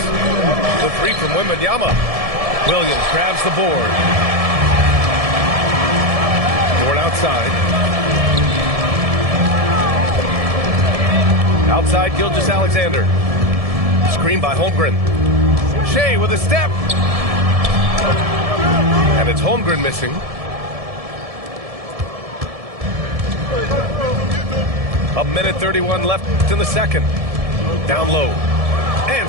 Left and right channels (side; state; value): left; late; 1.7 ms